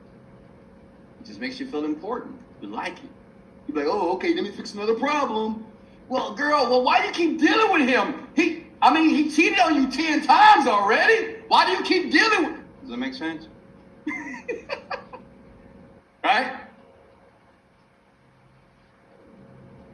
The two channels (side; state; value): both; identical; correlation 1.00